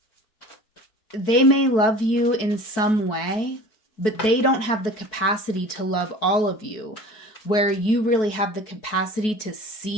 they may love you in some way, but they don't have the capacity to love all of you, where you really have the capacity to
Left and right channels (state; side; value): late; right; 4.6 ms